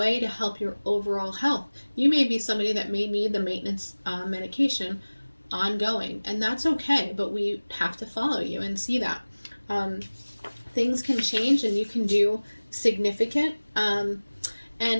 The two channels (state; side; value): inverted; both; correlation -1.00